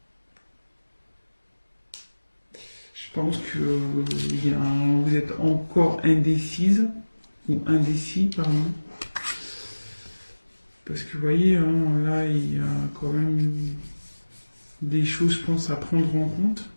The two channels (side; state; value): both; inverted; correlation -1.00